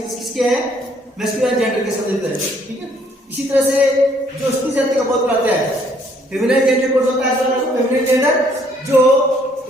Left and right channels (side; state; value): both; normal; correlation 0.65